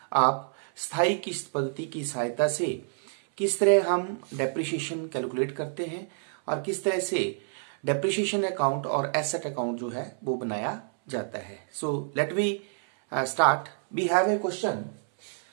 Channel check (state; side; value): silent; left; 59 dB below the other